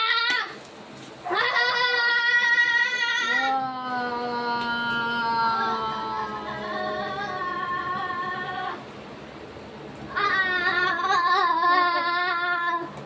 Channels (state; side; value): identical; both; correlation 1.00